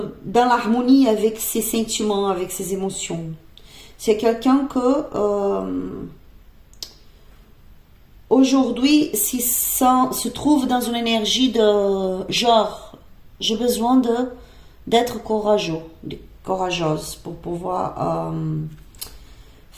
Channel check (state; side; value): identical; both; correlation 1.00